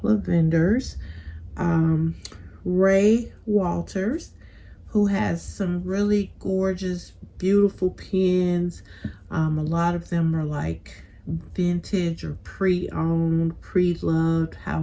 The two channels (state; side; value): identical; both; correlation 1.00